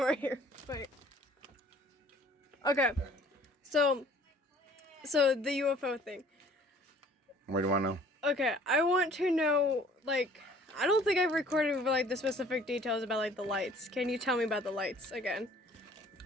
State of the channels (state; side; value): normal; both; correlation 0.54